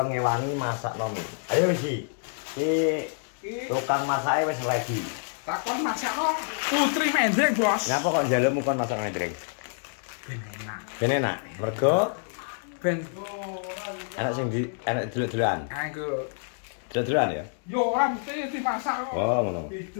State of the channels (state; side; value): silent; right; digital silence